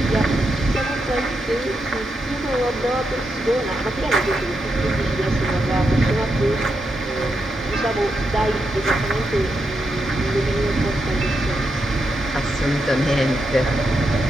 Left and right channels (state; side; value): normal; both; correlation 0.84